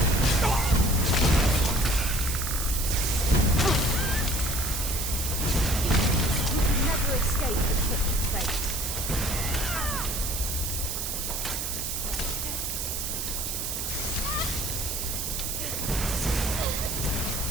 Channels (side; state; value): right; noise; hiss, 3 dB below the sound